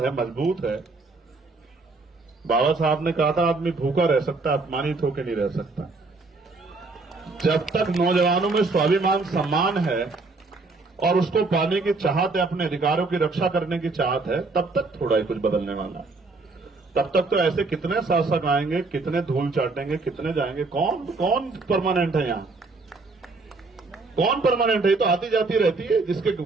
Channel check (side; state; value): left; quieter; 3.7 dB